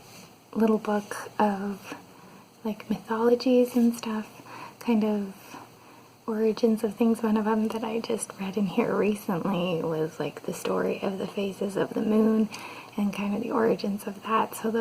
little book of like mythologies and stuff, kind of origins of things. One of them that I just read in here recently was like the story of the phases of the moon and kind of the origins of that. So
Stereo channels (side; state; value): both; identical; correlation 1.00